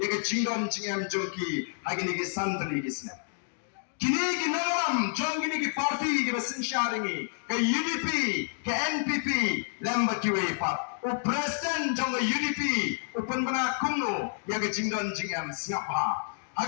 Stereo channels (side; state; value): right; silent; digital silence